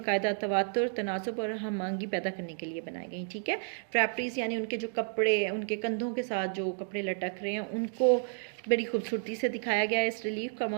तवातुर, तनासुब और हमआहंगी पैदा करने के लिए बनाई गई। ठीक है, ड्रैपरीज यानी उनके जो कपड़े, उनके कंधों के साथ जो कपड़े लटक रहे हैं उनको बड़ी खूबसूरती से दिखाया गया है। इस रिलीफ का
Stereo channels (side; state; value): left; silent; 57 dB below the other